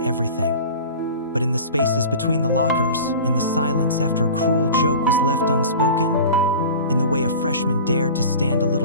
But in the spaces between the lockers, in the silence after a cruel joke was left unspoken, in the way a freshman dared to stand a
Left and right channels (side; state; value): both; inverted; correlation -0.37